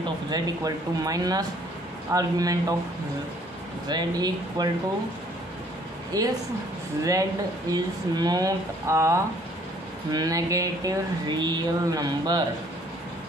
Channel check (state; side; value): normal; both; correlation 0.60